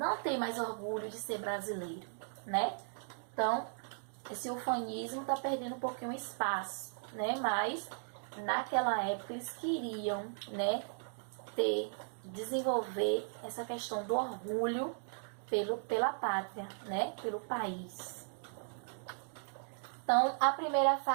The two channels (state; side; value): silent; left; digital silence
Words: têm mais orgulho de ser brasileiro, né? Então, esse ufanismo está perdendo um pouquinho espaço, né? Mas naquela época eles queriam, né, desenvolver essa questão do orgulho pela pátria, né, pelo país. Então, a primeira